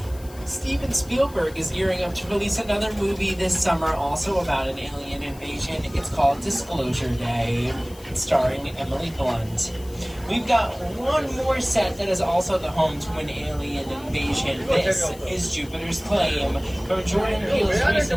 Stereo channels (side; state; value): left; noise; hiss, 21 dB below the sound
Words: Steven Spielberg is gearing up to release another movie this summer, also about an alien invasion. It's called Disclosure Day, starring Emily Blunt. We've got one more set that is also the home to an alien invasion. This is Jupiter's Claim from Jordan Peele's